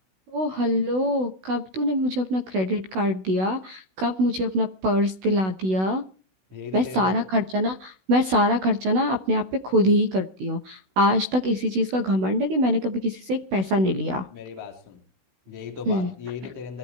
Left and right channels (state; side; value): late; left; 16 ms